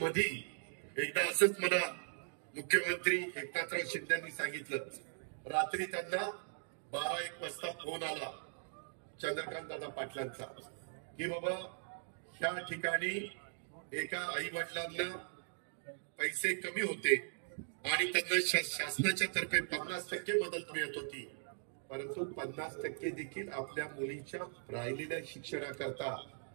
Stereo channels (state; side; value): silent; left; digital silence